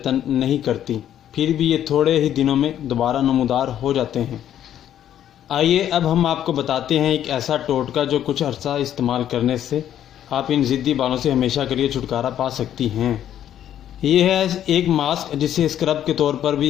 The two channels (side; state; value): right; quieter; 10.8 dB